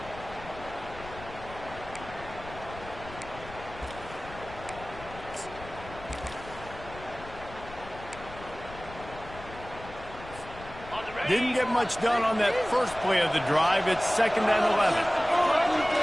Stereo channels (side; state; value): left; noise; rumble, 15 dB below the sound